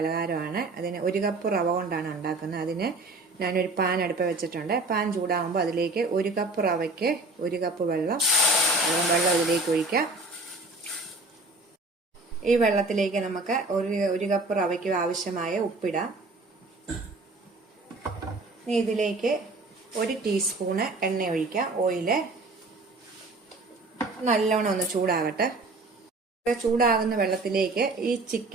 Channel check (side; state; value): left; quieter; 3.1 dB